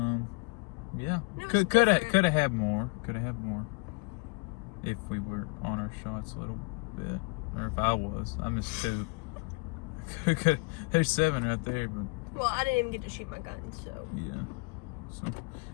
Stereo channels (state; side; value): quieter; right; 30.1 dB